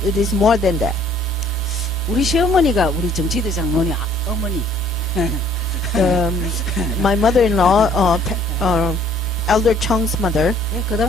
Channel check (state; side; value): normal; both; correlation 0.59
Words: more than that. 우리 시어머니가 우리 정치대 장로니 어머니. My mother-in-law, Elder Chung's mother, 그